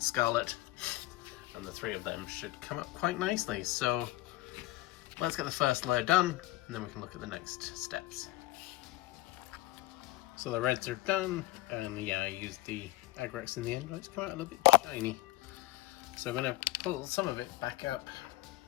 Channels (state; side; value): quieter; right; 17.8 dB